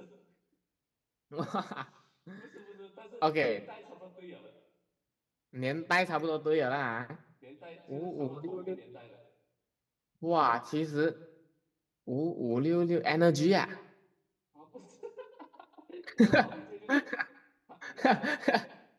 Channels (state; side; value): identical; both; correlation 1.00